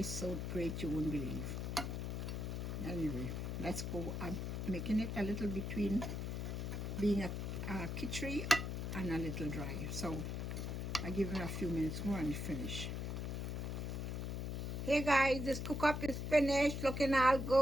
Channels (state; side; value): noise; left; hum, 3 dB below the sound